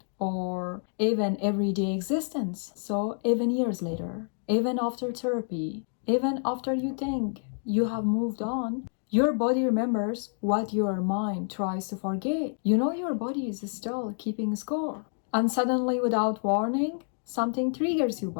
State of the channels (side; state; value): right; silent; 55 dB below the other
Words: or even everyday existence. So even years later, even after therapy, even after you think you have moved on, your body remembers what your mind tries to forget. You know your body is still keeping score. And suddenly, without warning, something triggers you